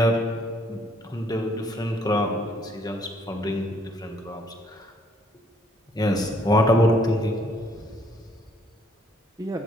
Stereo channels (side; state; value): both; normal; correlation 0.65